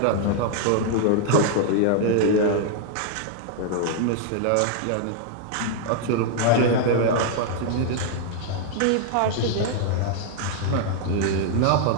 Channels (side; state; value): both; different; correlation -0.01